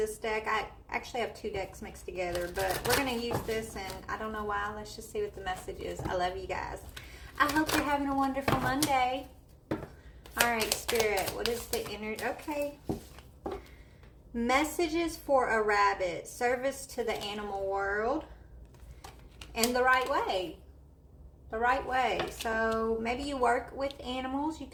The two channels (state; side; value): identical; both; correlation 1.00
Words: deck. I actually have two decks mixed together, but we're going to use this, and I don't know why. Let's just see what the message is. I love you guys. I hope you're having a wonderful Monday. All right, Spirit, what is the energy? Okay. Messages for a rabbit. Service to the animal world. And the right way. The right way. So maybe you work with animals. You